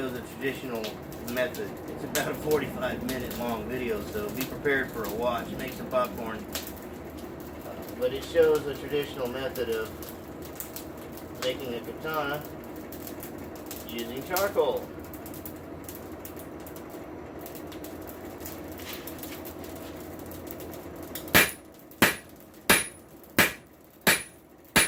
a traditional method. It's about a 45-minute long video, so be prepared for a watch. Make some popcorn. But it shows a traditional method of making a katana using charcoal.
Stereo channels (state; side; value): identical; both; correlation 1.00